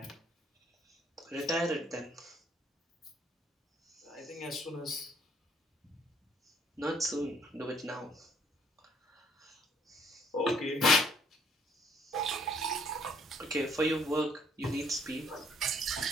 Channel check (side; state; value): both; normal; correlation 0.64